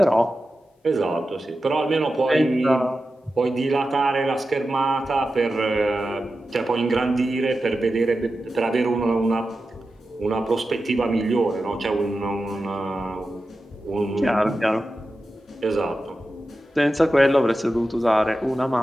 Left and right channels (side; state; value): both; normal; correlation 0.92